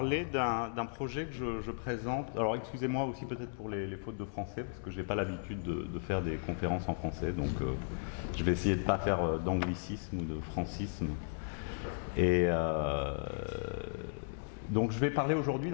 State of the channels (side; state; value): right; silent; digital silence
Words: d'un projet que je présente. Alors excusez-moi aussi peut-être pour les fautes de français, parce que je n'ai pas l'habitude de faire des conférences en français, donc je vais essayer de ne pas faire d'anglicisme ou de francisme. Et donc je vais parler aujourd'hui